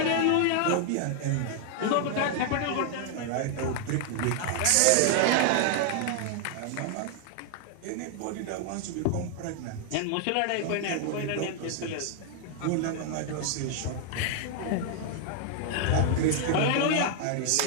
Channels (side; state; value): both; different; correlation 0.00